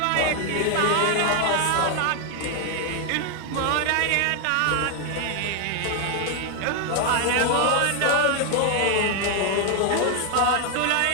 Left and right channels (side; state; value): both; different; correlation 0.01